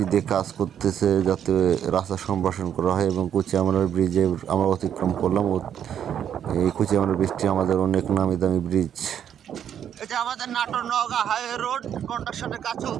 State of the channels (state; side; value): quieter; left; 9.3 dB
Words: দিয়ে কাজ করতেছে, যাতে রাস্তা সম্প্রসারণ করা হয়। এবং কুচিয়ামার ব্রিজে আমরা অতিক্রম করলাম। এই কুচিয়ামার ব্রিজটি আমাদের অনেক নামি দামি ব্রিজ। এটা আমাদের নাটোর নওগাঁ হাইওয়ে রোড, কন্ট্রাকশনের কাজ